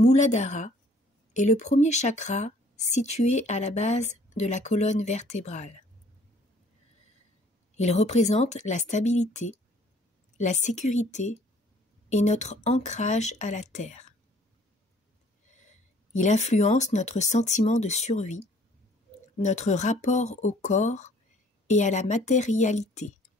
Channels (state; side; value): normal; both; correlation 0.58